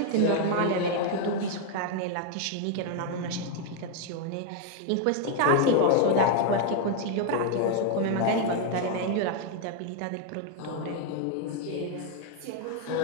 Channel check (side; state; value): both; different; correlation 0.00